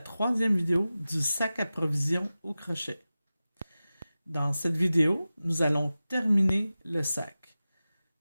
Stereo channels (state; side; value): inverted; both; correlation -0.95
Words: vidéo du sac à provisions au crochet. Dans cette vidéo, nous allons terminer le sac.